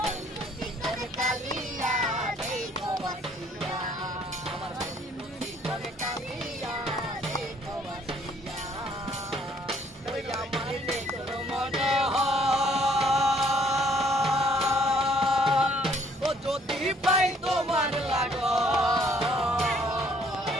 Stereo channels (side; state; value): both; normal; correlation 0.62